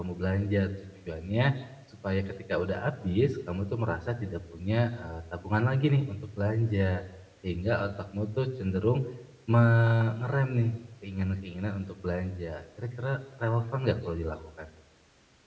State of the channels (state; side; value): identical; both; correlation 1.00